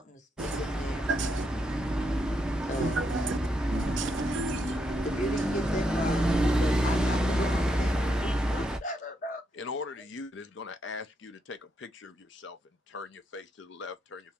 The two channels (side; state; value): both; normal; correlation 0.80